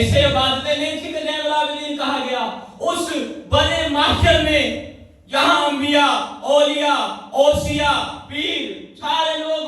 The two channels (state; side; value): identical; both; correlation 1.00